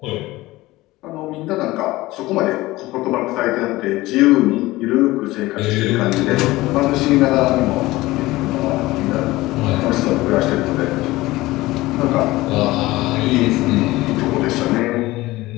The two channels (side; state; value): right; quieter; 18.7 dB